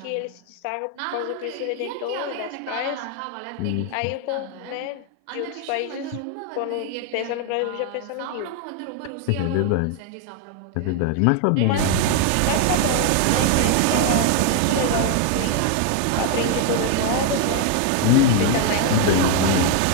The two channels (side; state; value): both; different; correlation 0.01